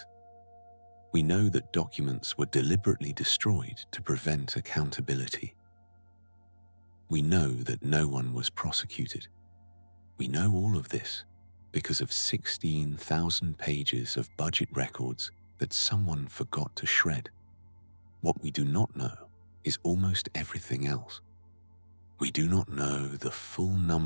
We know that documents were deliberately destroyed to prevent accountability. We know that no one was prosecuted. We know all of this because of 16,000 pages of budget records that someone forgot to shred. What we do not know is almost everything else. We do not know the full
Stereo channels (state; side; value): inverted; both; correlation -1.00